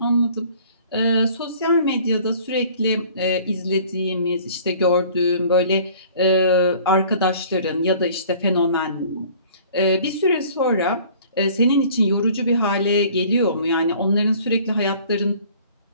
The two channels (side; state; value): both; inverted; correlation -0.51